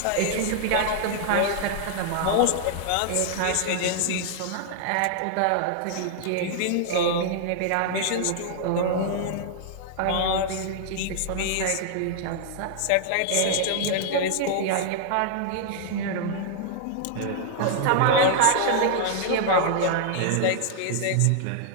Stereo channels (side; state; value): both; different; correlation -0.01